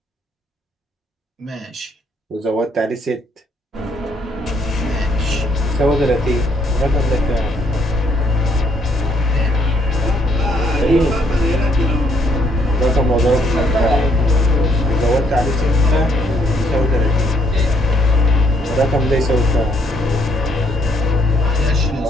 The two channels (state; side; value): normal; both; correlation 0.70